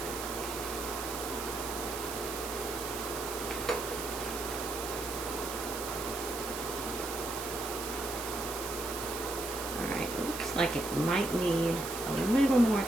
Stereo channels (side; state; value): right; noise; hiss, 7 dB below the sound